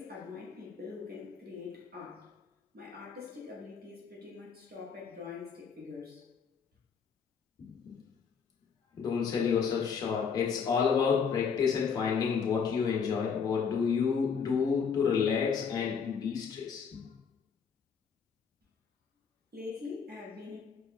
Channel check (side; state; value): right; quieter; 6.3 dB